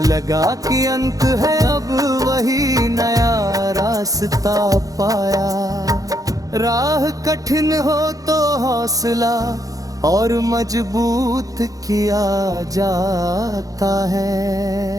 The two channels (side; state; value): left; late; 0.17 ms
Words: लगा कि अंत है, अब वही नया रास्ता पाया। राह कठिन हो तो हौसला और मजबूत किया जाता है।